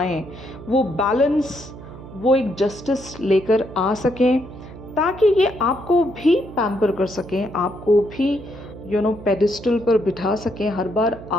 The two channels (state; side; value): noise; right; hum, 15 dB below the sound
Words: वो बैलेंस, वो एक जस्टिस लेकर आ सकें, ताकि ये आपको भी पैम्पर कर सकें, आपको भी पेडिस्टल पर बिठा सकें। हर बार